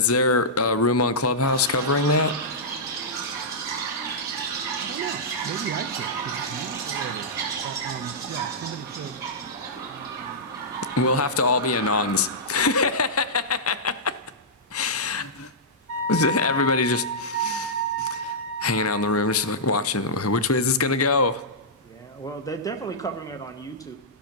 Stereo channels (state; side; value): normal; both; correlation -0.13